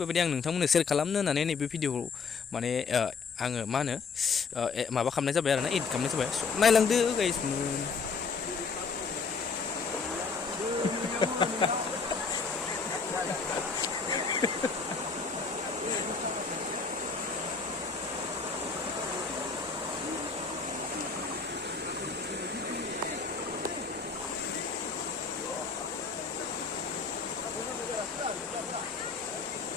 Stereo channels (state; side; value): quieter; right; 5.0 dB